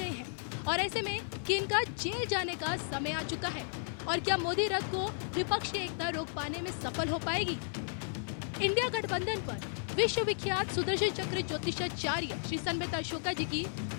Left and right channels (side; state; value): right; silent; 55 dB below the other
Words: हैं और ऐसे में किन का जेल जाने का समय आ चुका है और क्या मोदी रथ को विपक्ष की एकता रोक पाने में सफल हो पाएगी? इंडिया गठबंधन पर विश्व विख्यात सुदर्शन चक्र ज्योतिषाचार्य श्री संबित अशोका जी की